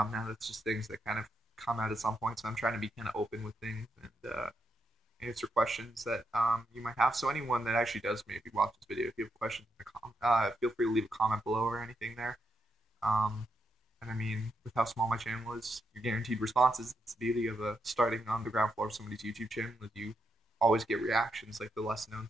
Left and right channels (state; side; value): normal; both; correlation 0.81